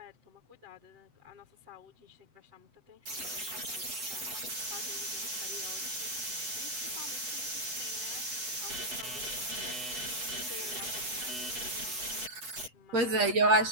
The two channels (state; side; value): late; left; 8.0 ms